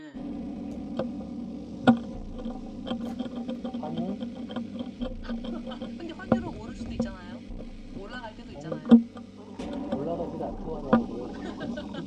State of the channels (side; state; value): both; identical; correlation 1.00